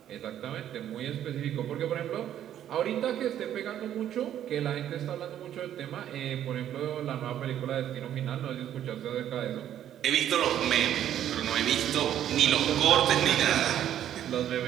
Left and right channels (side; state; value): left; quieter; 10.9 dB